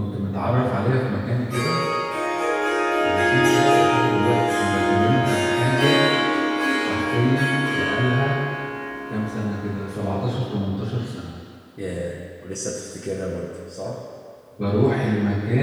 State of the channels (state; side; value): identical; both; correlation 1.00